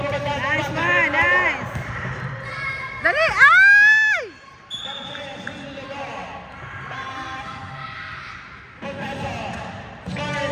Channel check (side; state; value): both; identical; correlation 1.00